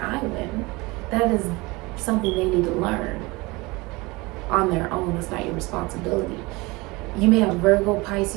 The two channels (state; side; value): quieter; left; 23.7 dB